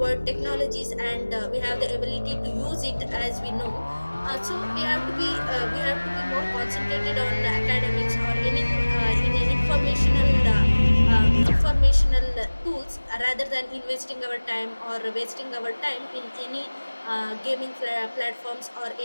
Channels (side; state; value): both; inverted; correlation -1.00